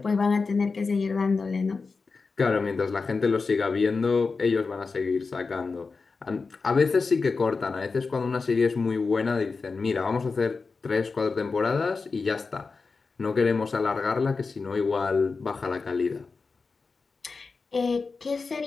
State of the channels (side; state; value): right; quieter; 4.4 dB